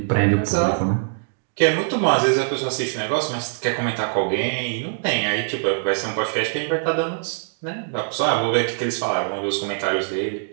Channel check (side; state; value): left; silent; digital silence